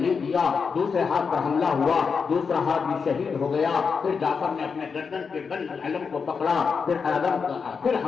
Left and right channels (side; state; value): right; quieter; 5.6 dB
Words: دیا، دوسرے ہاتھ پر حملہ ہوا، دوسرا ہاتھ بھی شہید ہو گیا. پھر جعفر نے اپنے گردن کے بل علم کو پکڑا، پھر